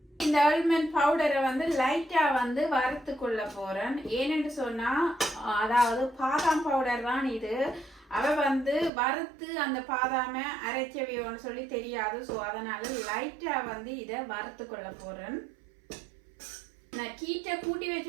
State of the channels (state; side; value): drops out; left; at 8.9 s